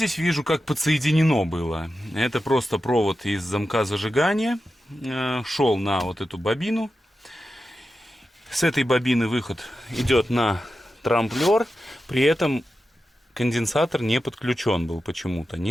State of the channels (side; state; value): both; normal; correlation 0.91